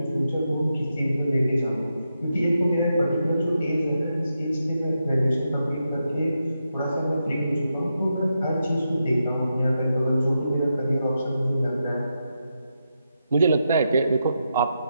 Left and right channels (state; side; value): inverted; both; correlation -0.85